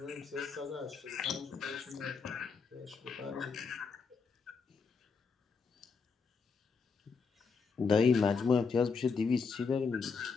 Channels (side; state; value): right; quieter; 5.2 dB